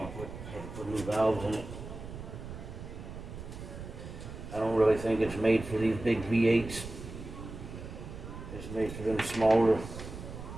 I had to put new valves in it. I don't really think it's made for these big V8s. It's made for them smaller.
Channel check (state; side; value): noise; right; rumble, 11 dB below the sound